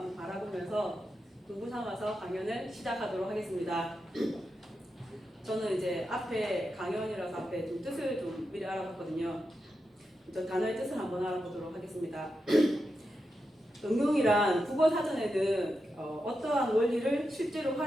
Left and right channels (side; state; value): both; normal; correlation 0.88